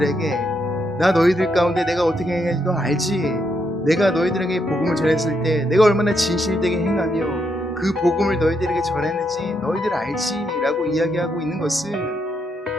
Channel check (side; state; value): both; normal; correlation 0.78